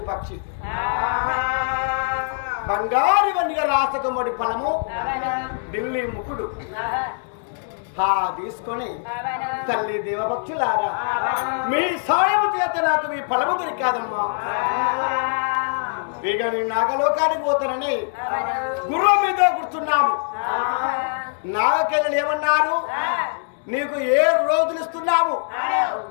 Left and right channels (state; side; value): silent; right; digital silence